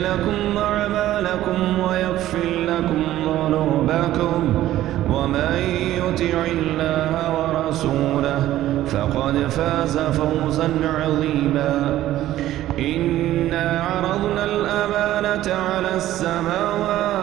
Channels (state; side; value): quieter; left; 14.0 dB